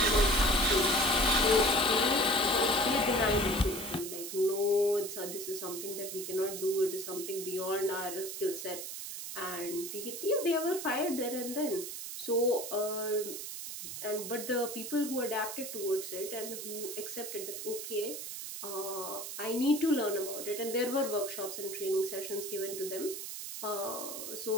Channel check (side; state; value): right; noise; hiss, 7 dB below the sound